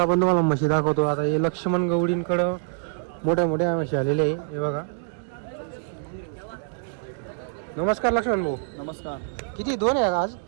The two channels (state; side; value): silent; left; digital silence